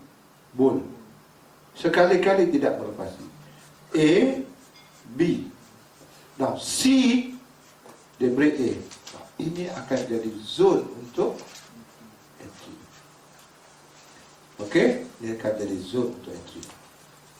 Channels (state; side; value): identical; both; correlation 1.00